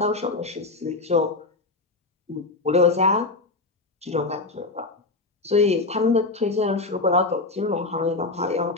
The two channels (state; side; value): quieter; right; 3.4 dB